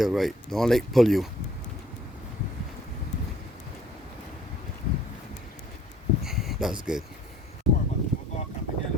right? Don't let it pull you. That's good.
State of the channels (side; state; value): both; normal; correlation 0.57